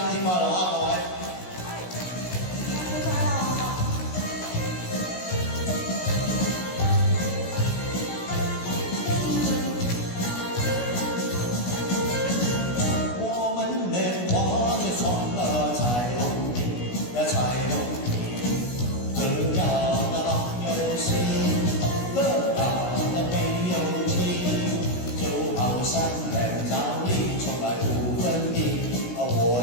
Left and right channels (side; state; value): right; late; 16 ms